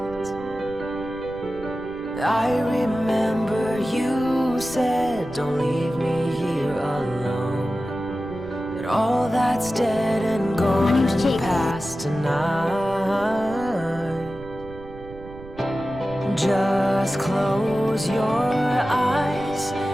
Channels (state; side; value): noise; right; rumble, 16 dB below the sound